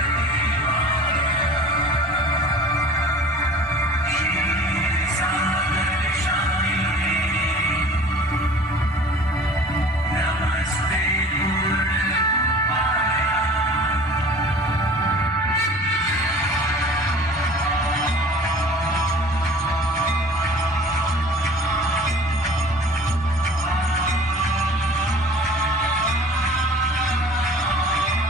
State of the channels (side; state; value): both; normal; correlation 0.45